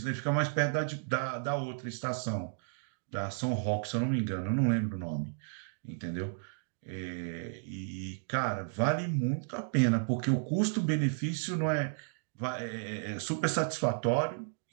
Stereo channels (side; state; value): left; silent; digital silence